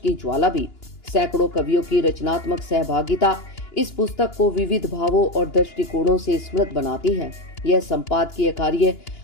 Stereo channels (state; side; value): late; right; 2.9 ms